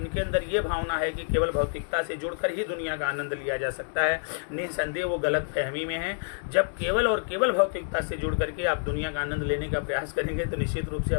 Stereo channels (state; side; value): silent; right; digital silence